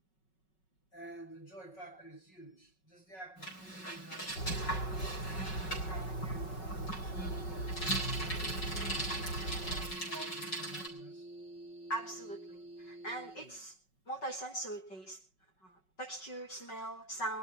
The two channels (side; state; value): right; late; 5.3 ms